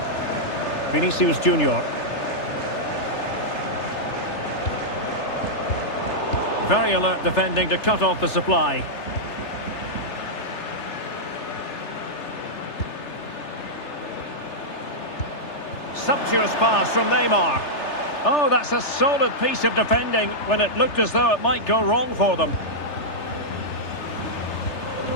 Vinicius Junior. Very alert defending to cut off the supply. Sumptuous pass from Neymar. Oh, that's a solid piece of defending when it looked as though it might go wrong for them.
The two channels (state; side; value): late; right; 3.3 ms